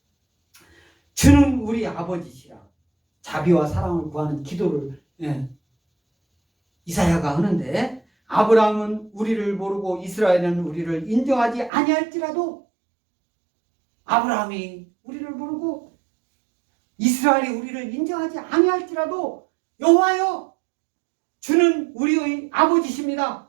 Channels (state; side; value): drops out; left; at 11.7 s